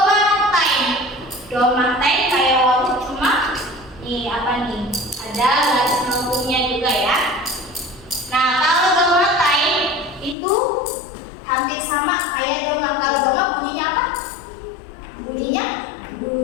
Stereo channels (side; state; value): right; drops out; at 10.4 s